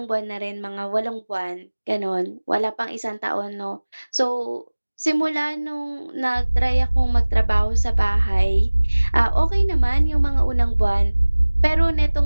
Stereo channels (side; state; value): both; inverted; correlation -1.00